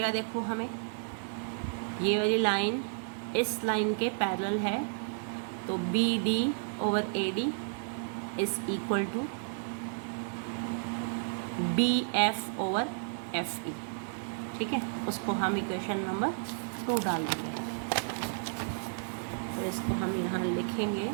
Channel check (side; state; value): left; silent; digital silence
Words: देखो हमें ये वाली लाइन इस लाइन के पैरेलल है तो BD over AD is equal to BF over FE। ठीक है, उसको हम इक्वेशन नंबर 2 डाल देंगे। तो इसको हम यहाँ लिखेंगे